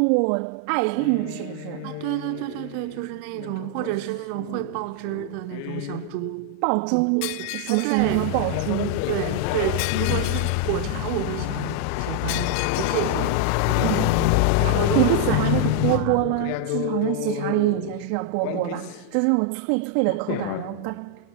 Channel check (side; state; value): both; different; correlation 0.00